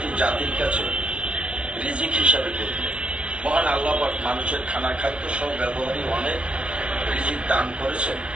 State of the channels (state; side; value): late; left; 0.059 ms